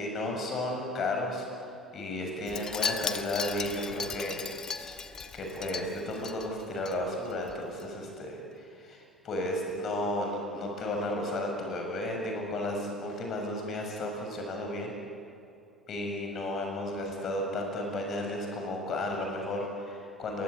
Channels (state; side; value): normal; both; correlation 0.44